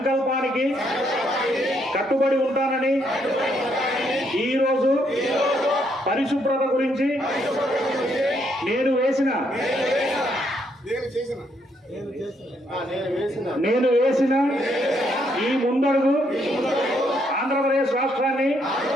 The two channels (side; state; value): both; normal; correlation 0.73